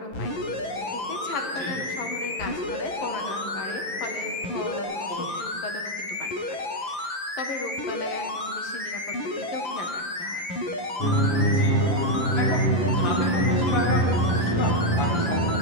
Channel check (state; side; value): late; right; 11 ms